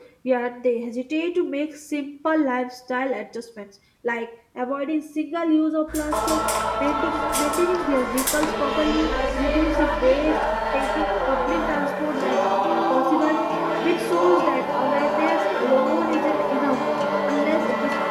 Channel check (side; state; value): both; identical; correlation 1.00